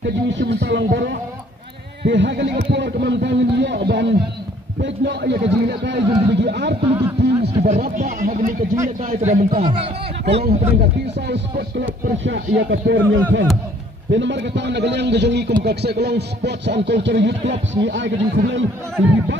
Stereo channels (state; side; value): normal; both; correlation 0.59